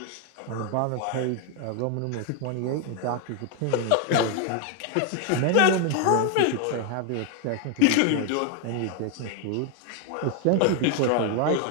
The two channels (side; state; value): both; different; correlation 0.01